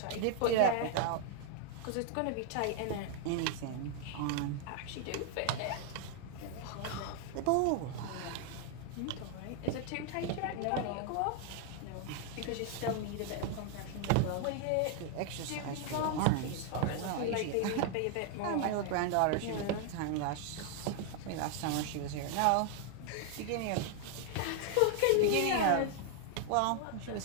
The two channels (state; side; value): different; both; correlation 0.00